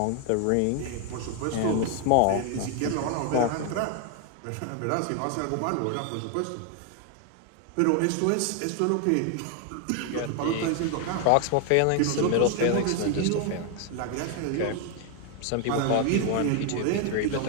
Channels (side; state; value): both; different; correlation 0.00